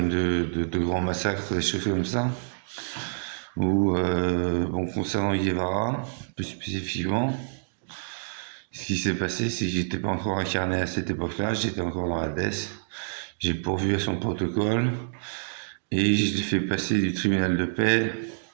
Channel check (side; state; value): left; silent; digital silence